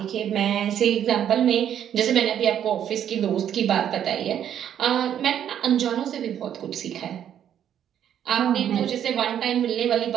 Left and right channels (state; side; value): quieter; left; 9.8 dB